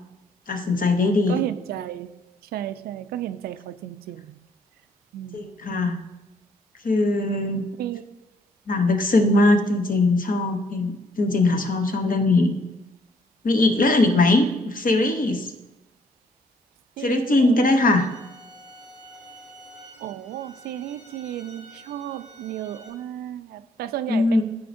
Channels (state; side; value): normal; both; correlation 0.67